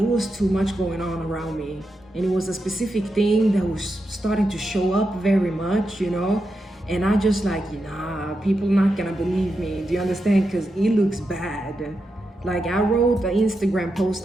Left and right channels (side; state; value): both; normal; correlation 0.87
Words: was too much going on around me. And it was a specific thing that was starting to show up very much, you know. And I just like, nah, people not gonna believe me. Do you understand? Because it looks bad. Like I wrote an Instagram post